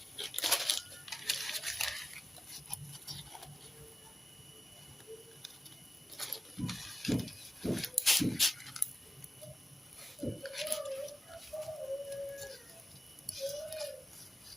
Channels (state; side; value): normal; both; correlation 0.94